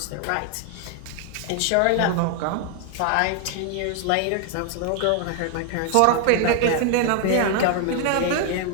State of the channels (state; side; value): different; both; correlation 0.00